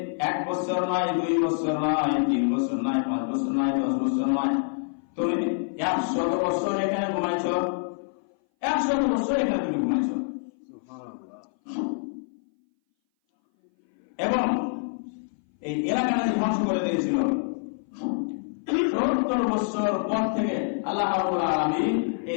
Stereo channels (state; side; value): silent; right; 59 dB below the other